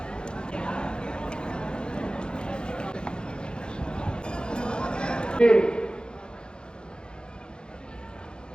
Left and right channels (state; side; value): late; right; 0.049 ms